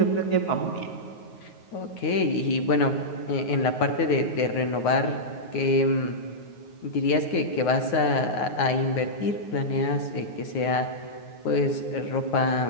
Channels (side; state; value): right; late; 9.5 ms